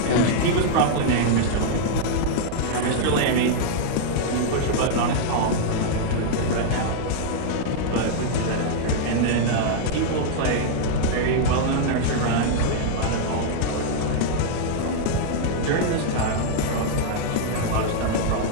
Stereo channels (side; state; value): both; different; correlation -0.01